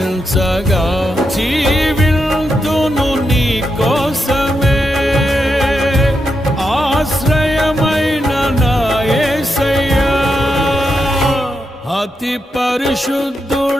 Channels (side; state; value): both; normal; correlation 0.85